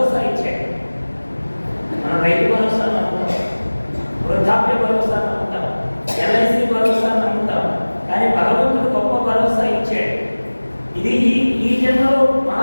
ఇచ్చాడు. మనం రైతు భరోసా నమ్ముతాం, వృద్ధాప్య భరోసా నమ్ముతాం, ఎల్ఐసి భరోసా నమ్ముతాం, కానీ భగవంతుడు గొప్ప భరోసా ఇచ్చాడు. ఇది ఈ జన్మలో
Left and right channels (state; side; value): inverted; both; correlation -1.00